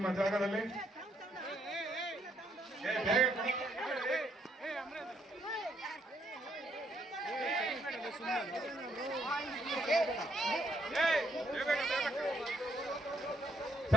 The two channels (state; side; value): normal; both; correlation 0.72